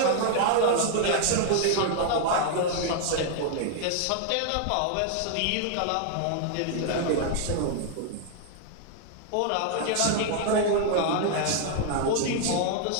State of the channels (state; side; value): different; both; correlation 0.00